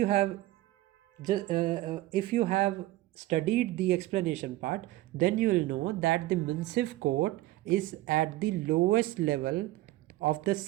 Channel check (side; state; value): left; quieter; 16.8 dB